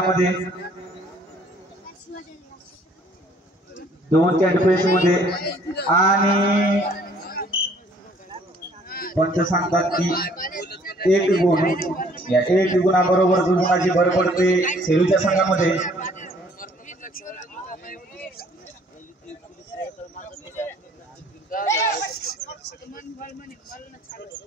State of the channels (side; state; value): both; normal; correlation 0.59